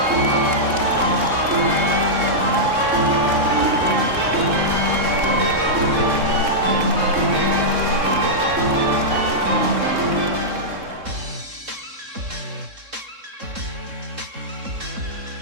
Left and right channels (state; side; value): late; left; 3.7 ms